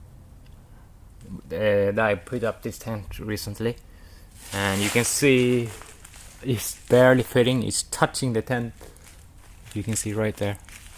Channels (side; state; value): both; identical; correlation 1.00